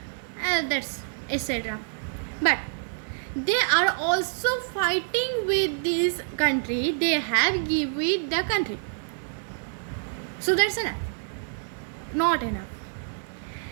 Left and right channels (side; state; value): left; silent; digital silence